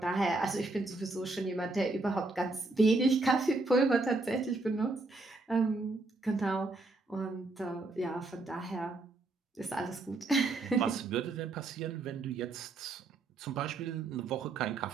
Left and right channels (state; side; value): quieter; left; 3.3 dB